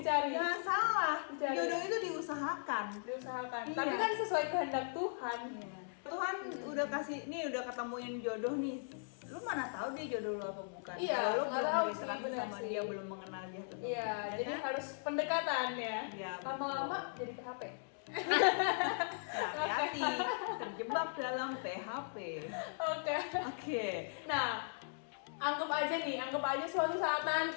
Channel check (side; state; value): right; silent; digital silence